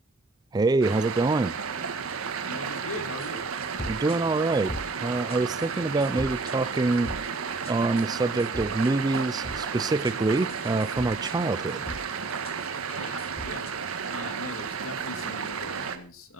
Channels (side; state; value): left; quieter; 3.4 dB